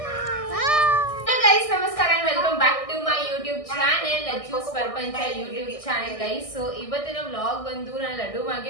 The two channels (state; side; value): late; right; 1.6 ms